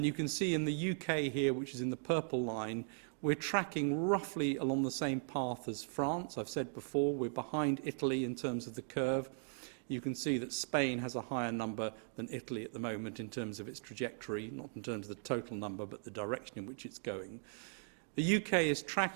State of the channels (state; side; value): silent; left; digital silence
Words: you can see in the UK here, which is in the purple line, we're tracking roughly along the same path as France. I've said before, we're behind Italy in terms of the curve. You can see that Spain has a higher number than Italy at the moment in terms of its trajectory, not in terms of the total number, but the direction in which it's going. The UK is